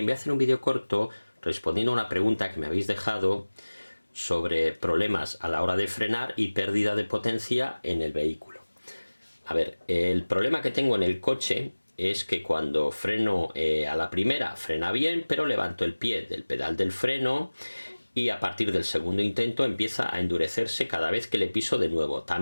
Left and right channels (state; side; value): inverted; both; correlation -1.00